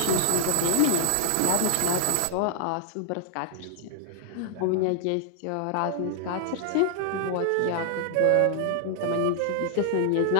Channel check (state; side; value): different; both; correlation -0.01